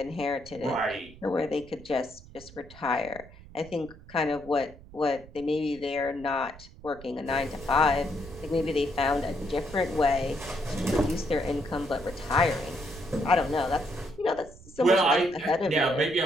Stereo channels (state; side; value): noise; right; rumble, 19 dB below the sound